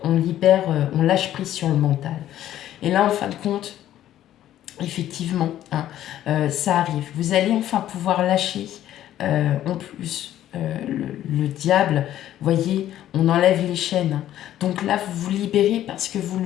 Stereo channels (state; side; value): quieter; right; 12.4 dB